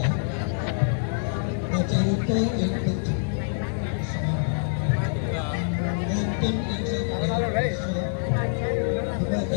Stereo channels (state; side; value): silent; right; digital silence